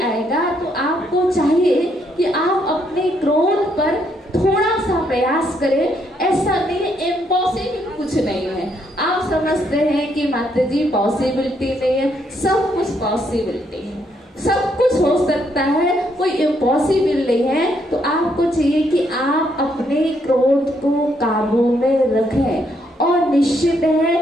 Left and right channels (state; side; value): normal; both; correlation 0.74